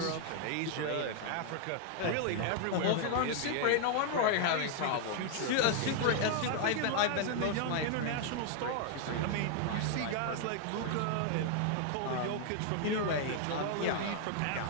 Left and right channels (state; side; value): different; both; correlation 0.00